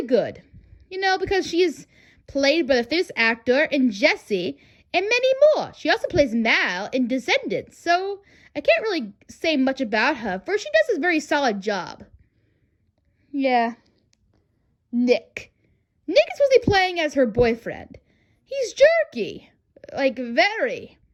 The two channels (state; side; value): identical; both; correlation 1.00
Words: good. Because she is played by the famous actor in Jessie and many more. She also plays Mal in Descendants, so I can't really say much about her, for she does a very solid job. Yeah. Nick. Nick is supposed to be playing as her boyfriend. He's jerky. Very.